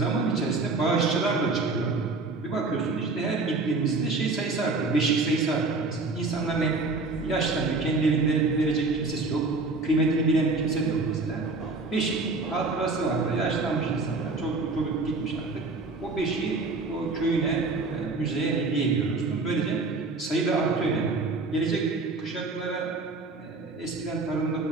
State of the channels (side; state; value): left; quieter; 3.6 dB